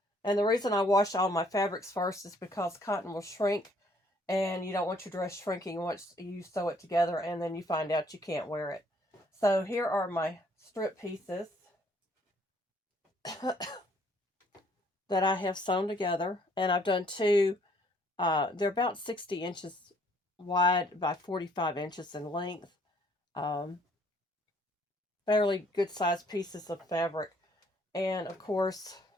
And the reason I wash all my fabrics first is because cotton will shrink, and you don't want your dress shrinking once you sew it together and then you find out you can't wear it. So here are my strip pieces that I have sewn together, and I've done two. They're about 60 inches wide by 45 inches in length. Fairly good sized pieces of fabric. And of course,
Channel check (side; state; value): both; normal; correlation 0.63